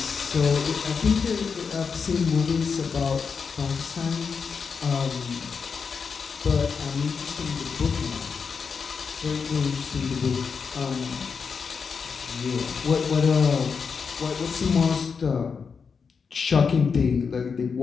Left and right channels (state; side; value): quieter; right; 5.7 dB